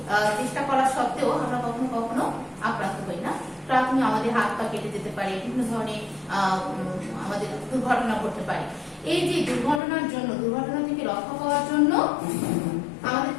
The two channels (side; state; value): right; drops out; at 9.8 s